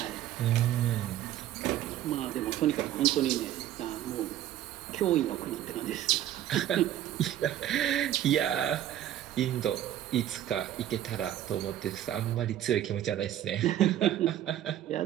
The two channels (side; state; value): left; quieter; 12.1 dB